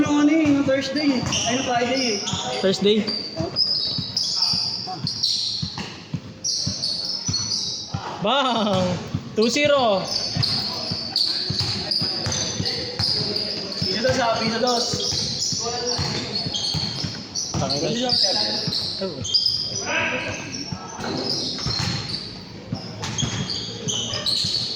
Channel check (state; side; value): identical; both; correlation 1.00